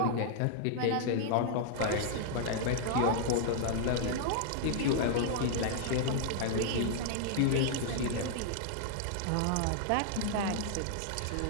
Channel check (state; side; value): different; both; correlation -0.01